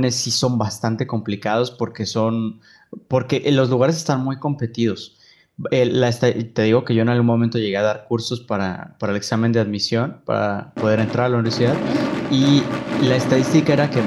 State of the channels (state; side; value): identical; both; correlation 1.00